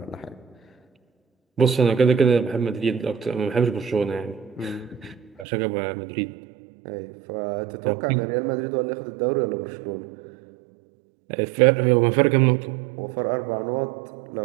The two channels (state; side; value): drops out; left; at 5.5 s